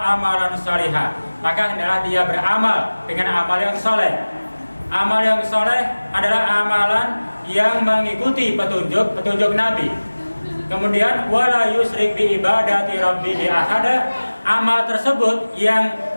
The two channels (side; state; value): both; inverted; correlation -1.00